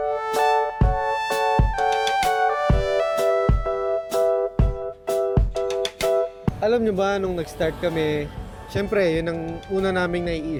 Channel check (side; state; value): both; identical; correlation 1.00